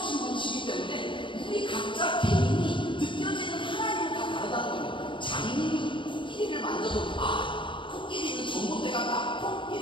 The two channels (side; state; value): right; late; 0.24 ms